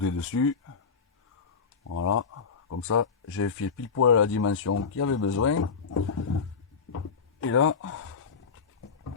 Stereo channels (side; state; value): right; quieter; 5.6 dB